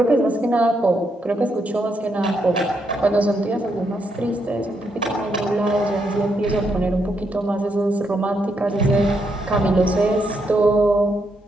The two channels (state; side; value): normal; both; correlation 0.78